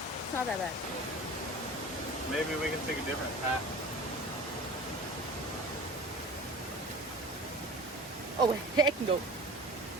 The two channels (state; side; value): normal; both; correlation 0.38